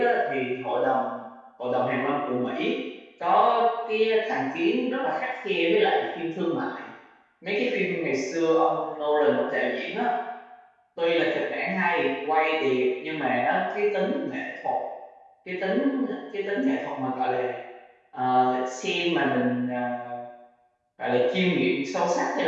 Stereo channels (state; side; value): identical; both; correlation 1.00